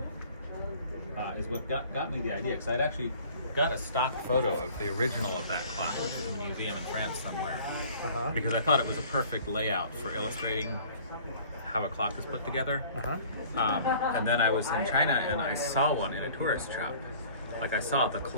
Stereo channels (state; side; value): inverted; both; correlation -0.50